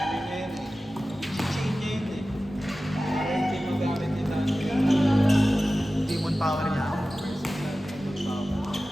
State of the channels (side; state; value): both; normal; correlation 0.95